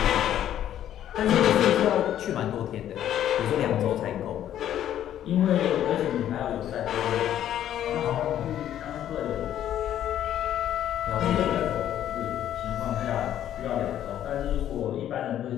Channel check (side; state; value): right; quieter; 11.2 dB